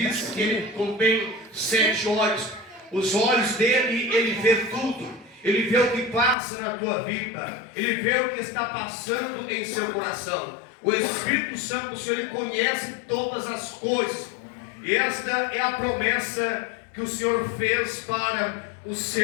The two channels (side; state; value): right; drops out; at 6.4 s